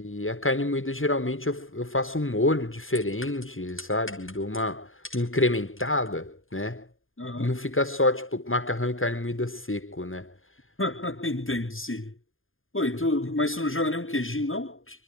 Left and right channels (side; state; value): right; late; 0.59 ms